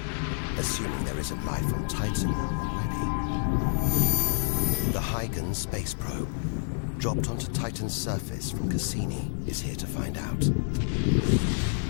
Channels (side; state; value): right; silent; digital silence